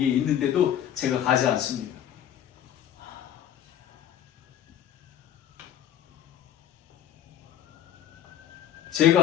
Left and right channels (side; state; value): right; quieter; 10.7 dB